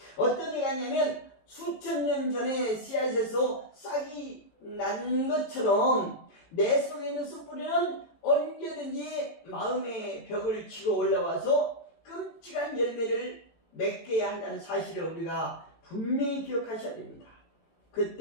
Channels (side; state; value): right; late; 18 ms